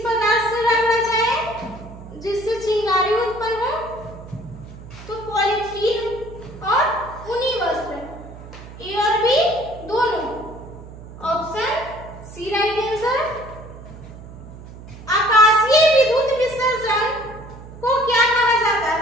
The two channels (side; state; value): right; noise; hum, 16 dB below the sound